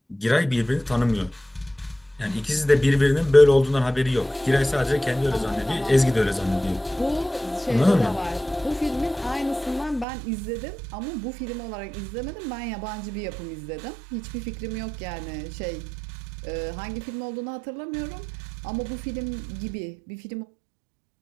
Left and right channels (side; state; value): left; drops out; at 10.1 s